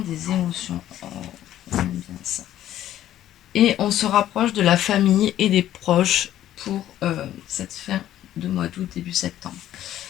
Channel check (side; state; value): right; quieter; 12.4 dB